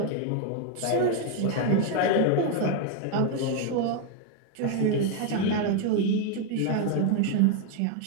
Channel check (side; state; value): both; different; correlation 0.01